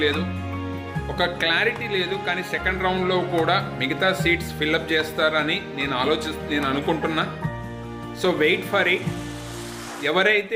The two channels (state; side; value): identical; both; correlation 1.00